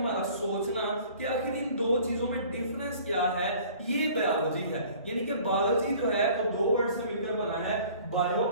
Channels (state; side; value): inverted; both; correlation -0.50